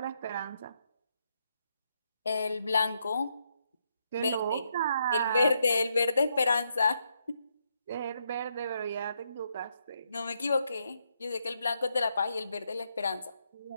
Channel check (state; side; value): inverted; both; correlation -0.79